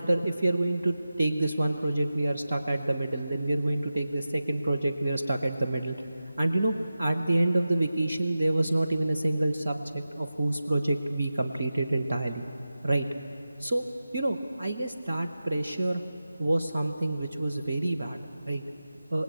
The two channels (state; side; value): inverted; both; correlation -0.93